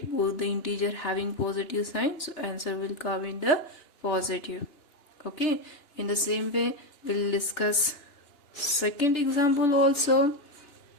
Both the integer having positive sign, so answer will come in the positive. Okay, in the same way we'll discuss second example also.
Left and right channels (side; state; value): right; late; 2.9 ms